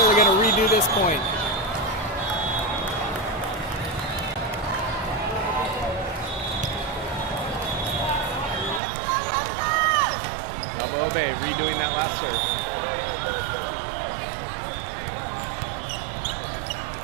going to redo this point. Balboa Bay redoing that last serve.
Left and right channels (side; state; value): left; drops out; at 8.8 s